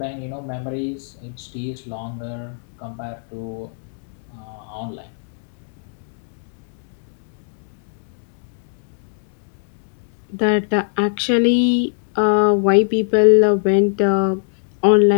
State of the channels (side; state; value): right; silent; 65 dB below the other